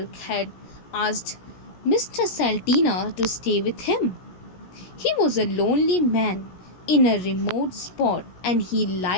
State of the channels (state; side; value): late; right; 17 ms